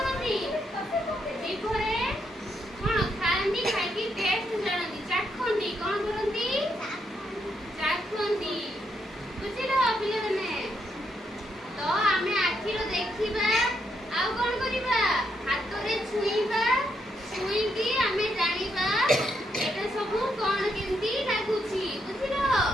ଜିଭରେ କଣ ଖାଆନ୍ତି? ଖାଇକି ଟେଷ୍ଟ ଜାଣନ୍ତି, ଚାଖନ୍ତି। କଣ କରନ୍ତି? ଚାଖନ୍ତି ବୁଝିଲ ପିଲାମାନେ। ତ ଆମେ ଆଖିରେ ଦେଖିବା, ଆଉ କଣ କରିବା? ହାତରେ ଛୁଇଁବା, ଛୁଇଁକି ଆମେ ଜାଣିବା এটা ସବୁ କଣ କେମିତି ଲାଗୁଛି ବୁଝିଲ।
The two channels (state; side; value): normal; both; correlation 0.78